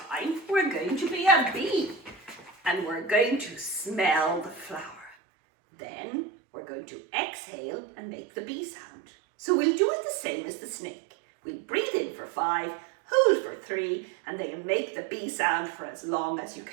we're going to be a bee. And we're going to smell the flower. Then we're going to exhale and make the bee sound. So we'll do it the same as the snake. We'll breathe in for 5, hold for 3, and then make the bee sound for as long as you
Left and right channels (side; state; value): left; drops out; at 5.2 s